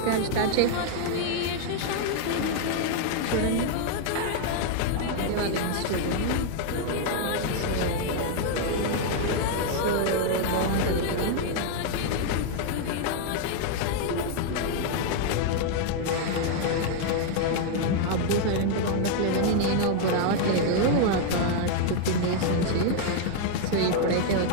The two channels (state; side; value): different; both; correlation 0.00